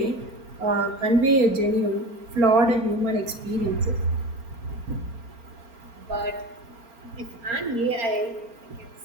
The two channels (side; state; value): left; late; 4.3 ms